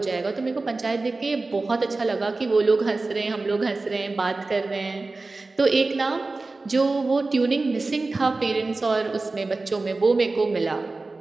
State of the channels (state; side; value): quieter; left; 3.5 dB